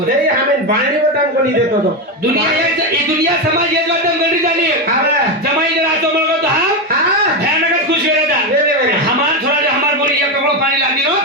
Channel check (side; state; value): both; normal; correlation 0.11